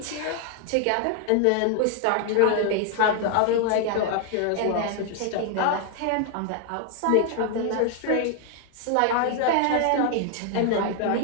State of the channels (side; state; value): both; different; correlation 0.00